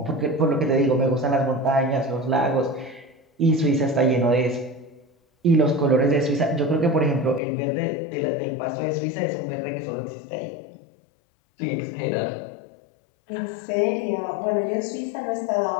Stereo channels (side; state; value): right; drops out; at 7.4 s